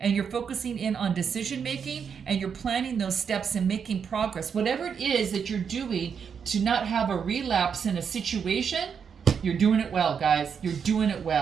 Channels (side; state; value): left; quieter; 6.8 dB